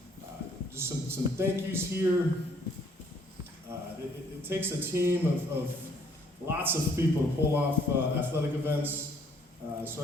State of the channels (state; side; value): normal; both; correlation 0.63